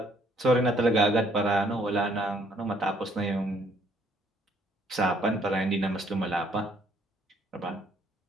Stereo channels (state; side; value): normal; both; correlation 0.65